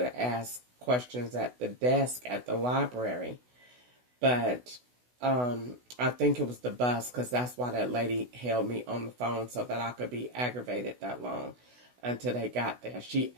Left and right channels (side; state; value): left; late; 16 ms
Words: ask questions at the desk at the library. But I think it was the bus, because that's why that lady held me on the phone so that I could be aggravated that long until they got there. She